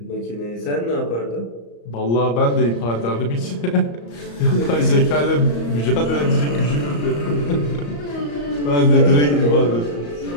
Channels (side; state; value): right; late; 34 ms